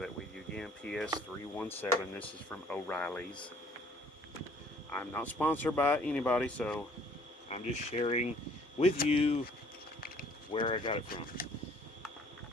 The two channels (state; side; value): normal; both; correlation 0.58